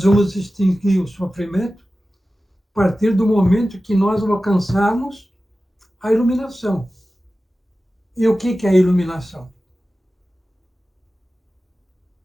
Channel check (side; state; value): both; normal; correlation 0.95